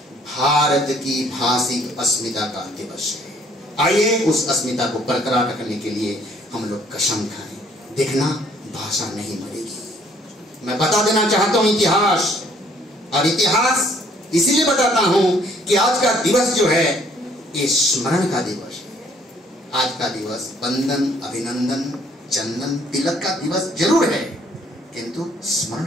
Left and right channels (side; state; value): both; normal; correlation 0.62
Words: भारत की भाषिक अस्मिता का दिवस है। आइए उस अस्मिता को बरकरार रखने के लिए हम लोग कसम खाएं। देखना भाषा नहीं मरेगी। मैं बता देना चाहता हूं इतिहास, और इतिहास इसीलिए बताता हूं कि आज का दिवस जो है ये स्मरण का दिवस है। आज का दिवस वंदन, अभिनंदन, चंदन, तिलक का दिवस जरूर है, किंतु स्मरण